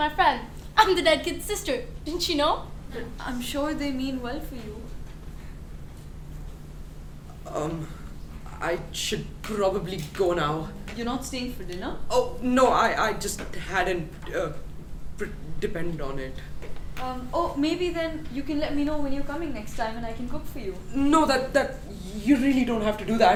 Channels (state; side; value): identical; both; correlation 1.00